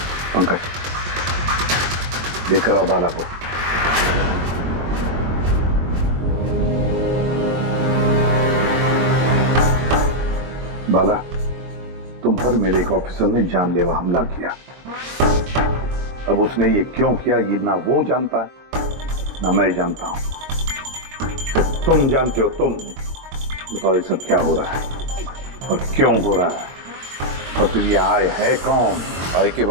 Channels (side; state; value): left; late; 22 ms